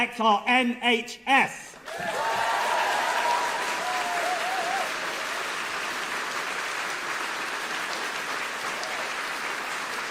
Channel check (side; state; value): both; identical; correlation 1.00